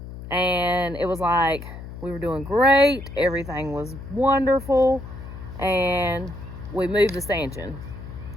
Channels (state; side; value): noise; left; hum, 12 dB below the sound